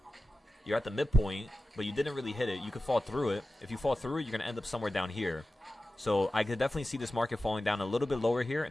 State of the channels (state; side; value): normal; both; correlation 0.94